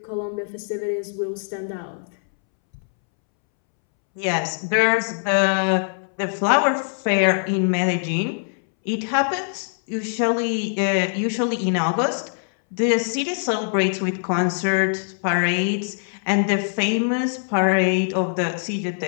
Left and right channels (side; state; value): right; silent; 64 dB below the other